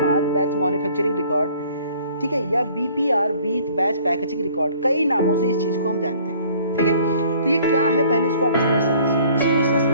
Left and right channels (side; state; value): both; inverted; correlation -0.55